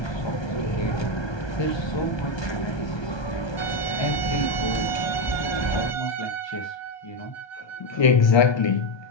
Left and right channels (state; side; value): late; right; 1.2 ms